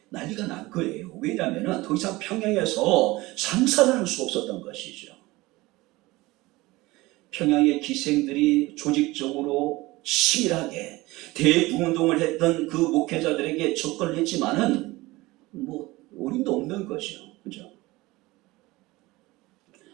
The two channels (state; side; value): quieter; left; 20.4 dB